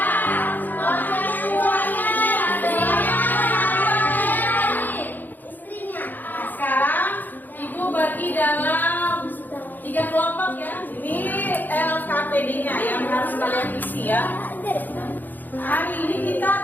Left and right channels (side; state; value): right; late; 0.087 ms